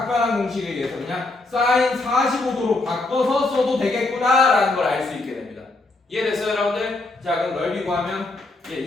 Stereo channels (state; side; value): quieter; right; 3.1 dB